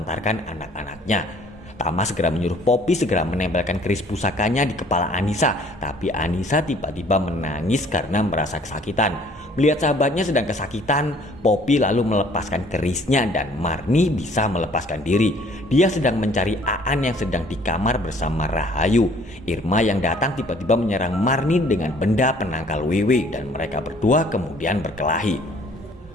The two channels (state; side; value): normal; both; correlation 0.57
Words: anak-anaknya. Tama segera menyuruh Poppy segera menempelkan keris pusakanya di kepala Anissa, tapi Anissa tiba-tiba menangis karena merasa kesakitan. Melihat sahabatnya sedang kesakitan, Poppy lalu melepaskan kerisnya dan Marni bisa melepaskan diri. Dia sedang mencari Aan yang sedang di kamar bersama Rahayu. Irma yang datang tiba-tiba menyerang Marni dengan benda penangkal Wewe dan mereka berdua kemudian berkelahi.